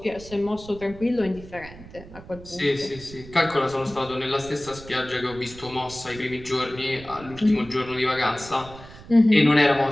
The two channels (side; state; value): right; noise; rumble, 17 dB below the sound